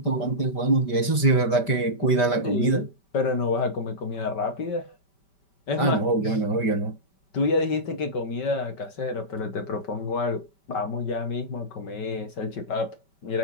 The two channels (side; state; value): right; late; 5.1 ms